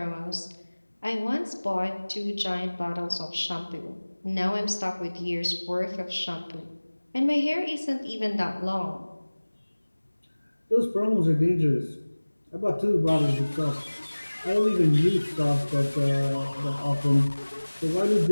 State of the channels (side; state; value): both; inverted; correlation -1.00